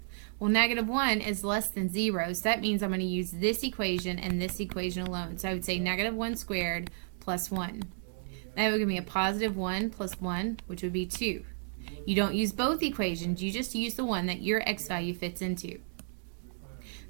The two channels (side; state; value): left; silent; digital silence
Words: Well, negative 1 is less than 0, so that means I'm going to use this equation and this equation alone. So I would say negative 1 squared plus 1. That would give me a positive 1 plus 1, which would be 2. You don't use both equations, you just use the one that your x value fits into.